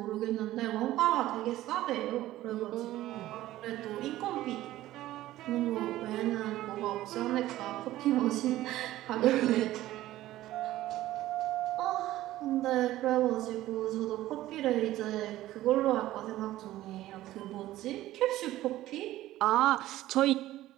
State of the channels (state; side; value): quieter; left; 15.2 dB